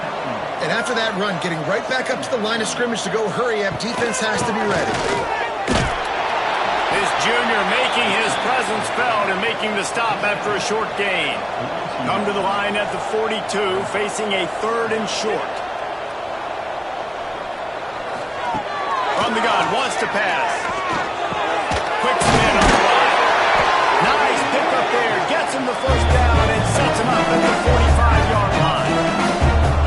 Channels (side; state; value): both; identical; correlation 1.00